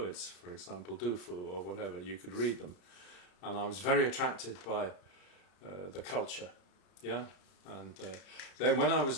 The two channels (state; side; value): late; right; 34 ms